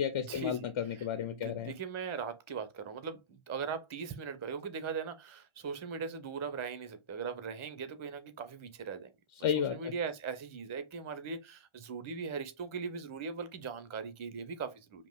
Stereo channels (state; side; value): late; right; 1.3 ms